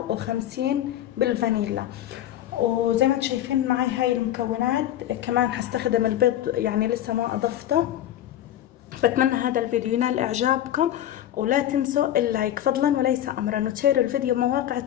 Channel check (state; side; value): quieter; right; 11.9 dB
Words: و50 بالفانيلا. وزي ما انتم شايفين معي هاي المكونات. كمان حستخدم البيض، يعني لسه ما اضفته. بتمنى هذا الفيديو ينال اعجابكم، ولا تنسوا اللايك فضلا وليس امرا، وتشيروا الفيديو بمواقع